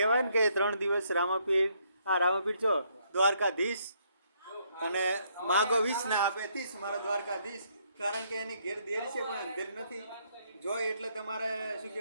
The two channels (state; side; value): inverted; both; correlation -0.70